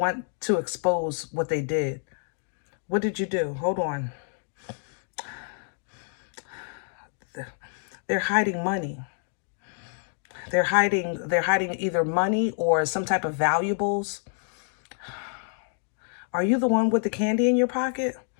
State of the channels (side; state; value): right; silent; 60 dB below the other